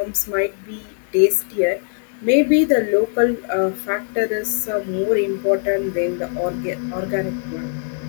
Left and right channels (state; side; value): silent; right; 56 dB below the other